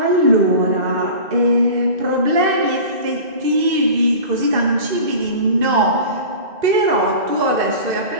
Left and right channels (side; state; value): left; late; 1.9 ms